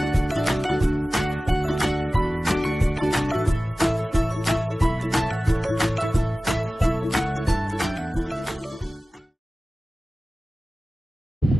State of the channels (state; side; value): normal; both; correlation 0.97